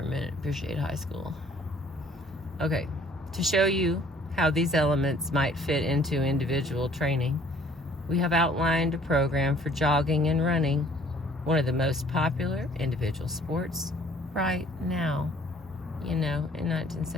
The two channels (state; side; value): normal; both; correlation 0.57